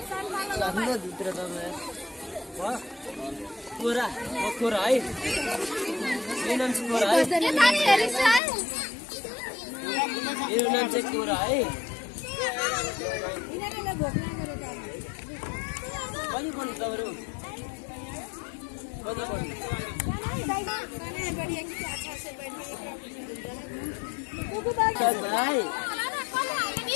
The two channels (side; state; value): right; drops out; at 8.4 s